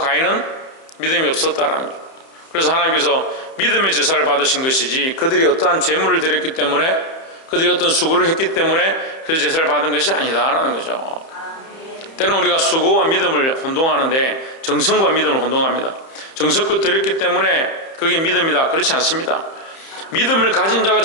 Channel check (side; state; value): right; late; 31 ms